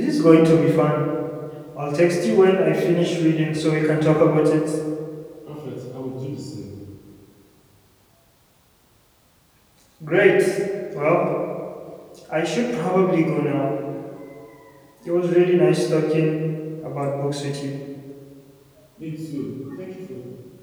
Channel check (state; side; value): identical; both; correlation 1.00